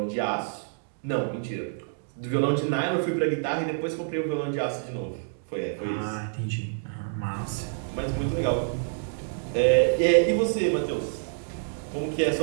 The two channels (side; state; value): left; silent; digital silence